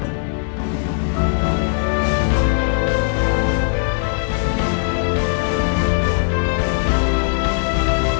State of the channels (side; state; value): right; silent; digital silence